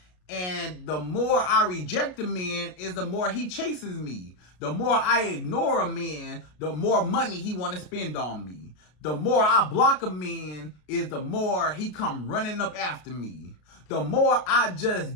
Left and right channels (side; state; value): right; late; 33 ms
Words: And the more I reject a man is the more he chases me. The more I ignore a man, the more money he want to spend on me. The more I block a man is the more he come running up after me. The more I